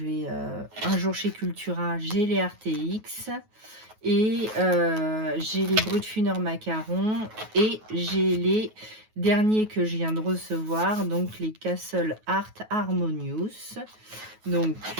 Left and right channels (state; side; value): late; left; 9.3 ms